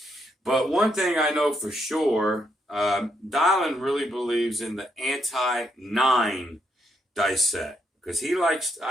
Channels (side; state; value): both; normal; correlation 0.77